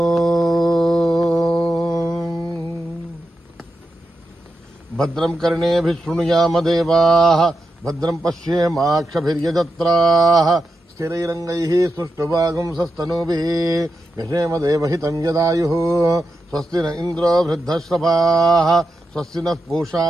భద్రం కర్ణేభిః శృణుయామ దేవాః భద్రం పశ్యేమాక్షభిర్యజత్రాః స్థిరైరంగైః సుష్ఠువాగుంసస్తనూభిः యశేమ దేవహితం యదాయుః. స్వస్తి న ఇంద్రో వృద్ధశ్రవాः స్వస్తి నః పూషా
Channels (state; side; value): normal; both; correlation 0.88